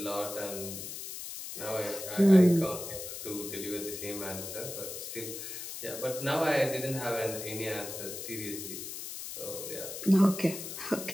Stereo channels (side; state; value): left; noise; hiss, 8 dB below the sound